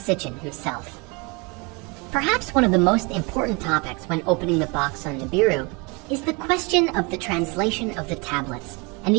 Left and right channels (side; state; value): left; quieter; 29.4 dB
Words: himself. Perhaps one of the most important topics when opening the box on Nibiru is the question of the translation of the tablets and